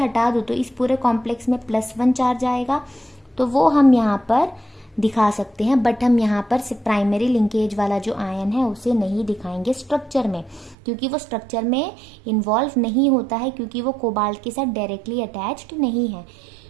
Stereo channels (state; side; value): drops out; left; at 10.8 s